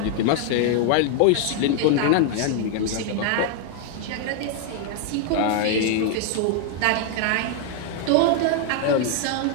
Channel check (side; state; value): both; different; correlation 0.00